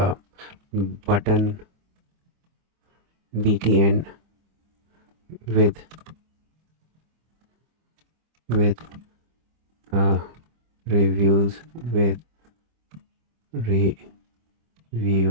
button btn with with oh, reviews with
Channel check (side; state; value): left; late; 25 ms